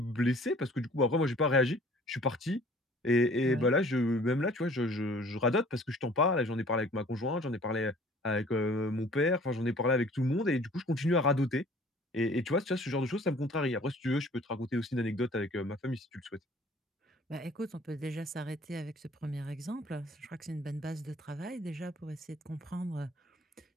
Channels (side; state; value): both; normal; correlation 0.52